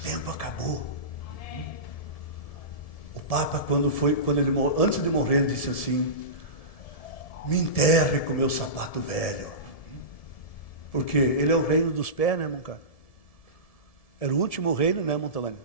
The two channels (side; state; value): right; late; 1.7 ms